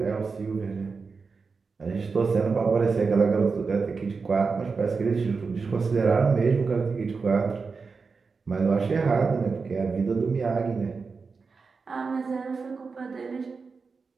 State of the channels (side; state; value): left; quieter; 4.8 dB